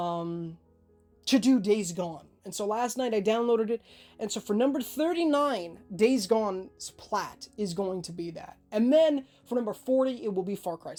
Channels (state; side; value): identical; both; correlation 1.00